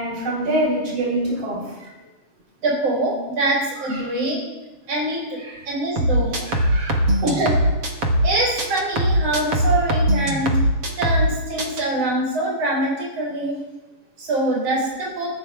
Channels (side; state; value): left; late; 7.3 ms